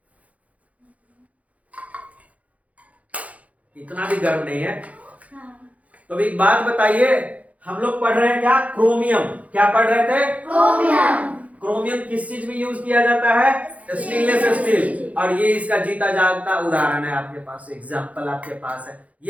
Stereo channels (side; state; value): left; late; 0.068 ms